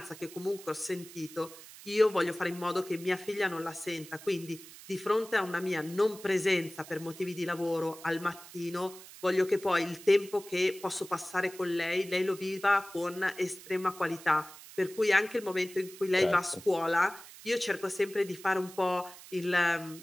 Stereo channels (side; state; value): right; noise; hiss, 17 dB below the sound